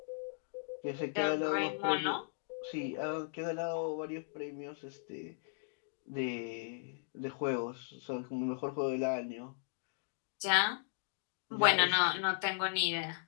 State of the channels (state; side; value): silent; right; digital silence